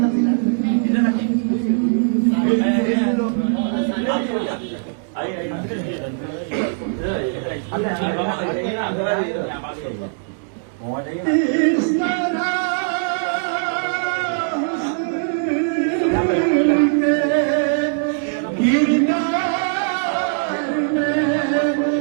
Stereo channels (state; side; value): silent; left; digital silence